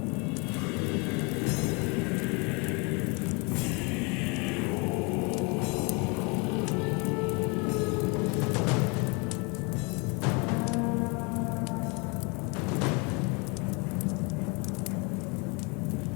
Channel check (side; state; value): right; quieter; 30.6 dB